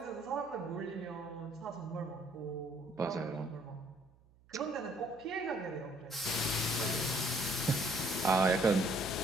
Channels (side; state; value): right; noise; hum, 29 dB below the sound